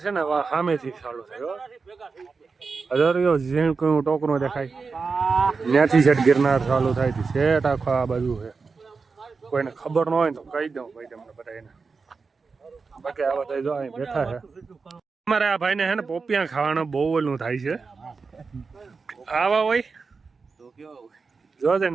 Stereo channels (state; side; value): quieter; left; 4.7 dB